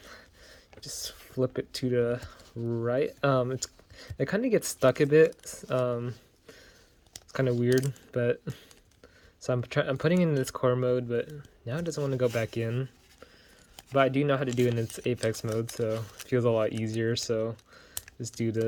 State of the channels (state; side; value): identical; both; correlation 1.00